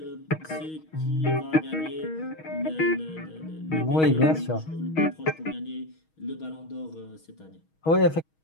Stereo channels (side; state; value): right; late; 6.3 ms